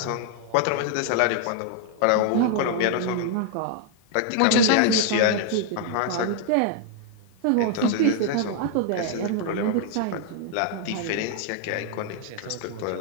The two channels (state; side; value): different; both; correlation 0.00